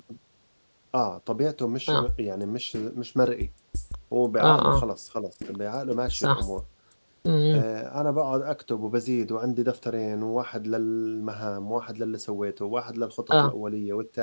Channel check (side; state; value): both; inverted; correlation -1.00